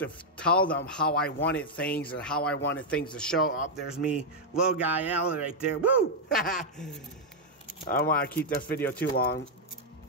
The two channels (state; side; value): normal; both; correlation -0.02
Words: tell them how I wanted things and how I wanted things to show up. There's me, little guy Alan right there. Woo! I don't want to keep this video too long.